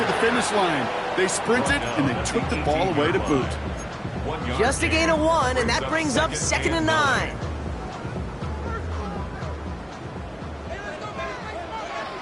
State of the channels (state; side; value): identical; both; correlation 1.00